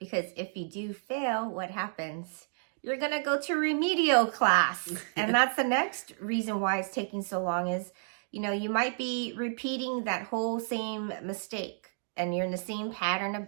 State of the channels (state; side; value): silent; left; digital silence